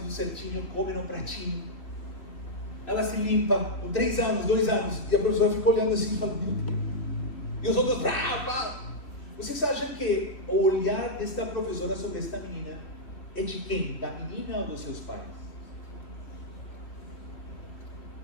certinho, come num pratinho. Ela se limpa com 3 anos, 2 anos, e a professora fica olhando assim e fala, meu Deus. E os outros, vocês acham que o olhar desta professora sobre esta menina é de quem? Da menina ou dos seus pais?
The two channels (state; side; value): late; right; 3.3 ms